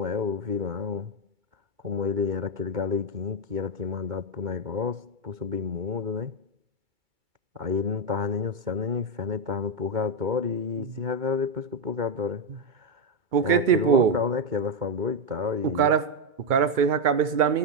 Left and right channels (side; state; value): left; late; 2.3 ms